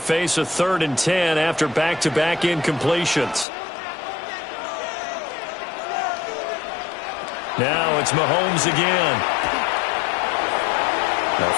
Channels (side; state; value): right; drops out; at 3.5 s